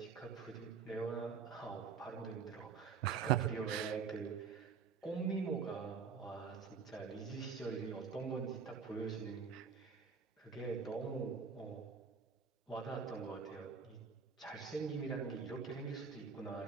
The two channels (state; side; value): quieter; left; 6.0 dB